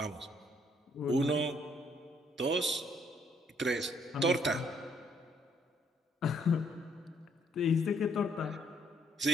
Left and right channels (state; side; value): normal; both; correlation 0.68